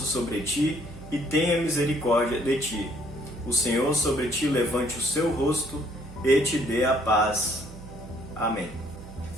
sobre ti e tenha misericórdia de ti. O Senhor sobre ti levante o seu rosto e te dê a paz. Amém.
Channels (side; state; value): right; noise; hum, 16 dB below the sound